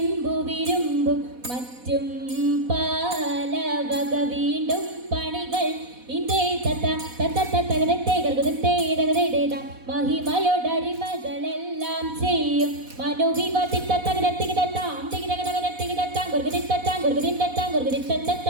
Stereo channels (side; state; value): left; late; 4.1 ms